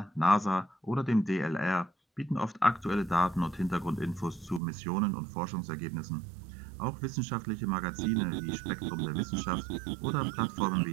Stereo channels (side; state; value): left; drops out; at 4.6 s